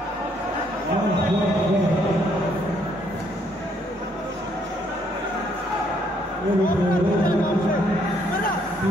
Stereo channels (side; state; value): both; normal; correlation 0.69